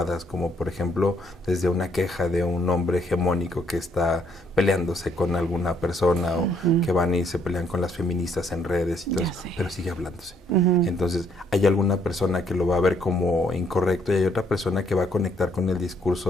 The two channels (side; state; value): both; normal; correlation 0.68